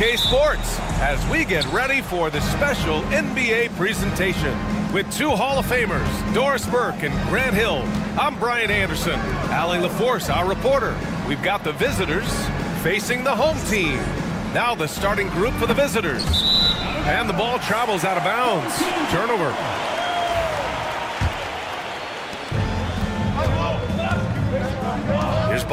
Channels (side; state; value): both; identical; correlation 1.00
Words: Sports as we get ready for the special NBA presentation. With two Hall of Famers, Doris Burke and Grant Hill, I'm Brian Anderson. Allie LaForce, our reporter. We've got the visitors facing the home team. Now the starting group for the visitors. And the ball travels out of bounds. Turnover. Here's